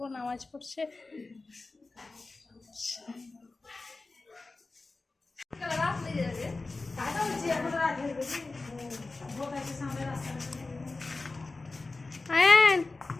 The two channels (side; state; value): right; quieter; 3.5 dB